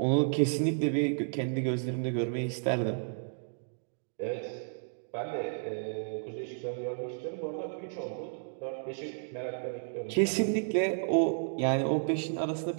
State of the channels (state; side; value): silent; left; digital silence